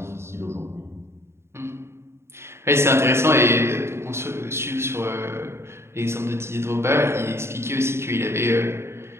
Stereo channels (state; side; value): late; left; 0.12 ms